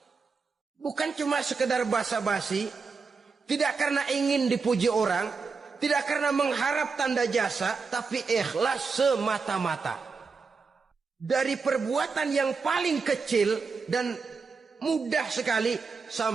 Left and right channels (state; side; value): quieter; left; 4.9 dB